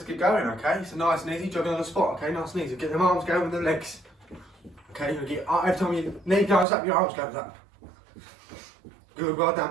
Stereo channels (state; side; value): drops out; left; at 6.7 s